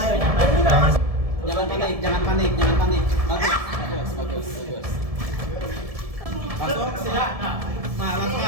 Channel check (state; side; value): late; left; 1.7 ms